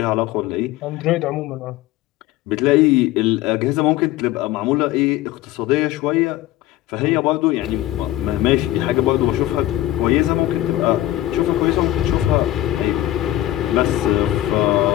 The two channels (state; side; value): quieter; right; 14.8 dB